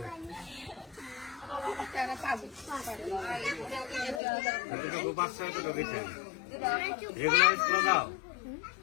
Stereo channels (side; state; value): right; drops out; at 4.2 s